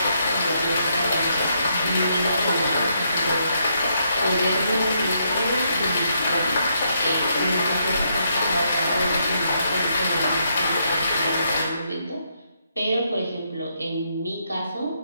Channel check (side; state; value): both; inverted; correlation -0.76